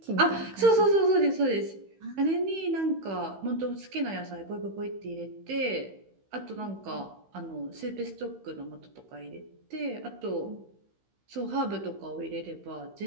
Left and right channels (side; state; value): left; late; 15 ms